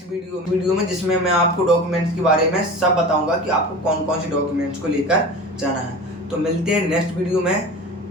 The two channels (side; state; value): both; normal; correlation 0.34